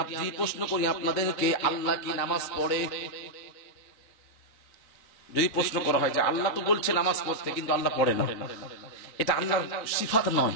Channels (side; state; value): right; late; 4.0 ms